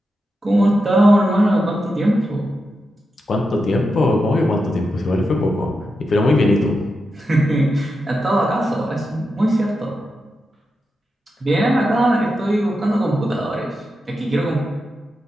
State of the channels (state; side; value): normal; both; correlation 0.88